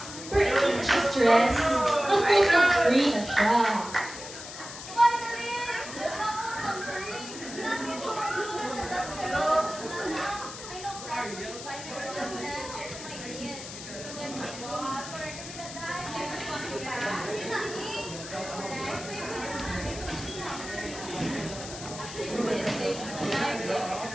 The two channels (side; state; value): left; noise; hiss, 11 dB below the sound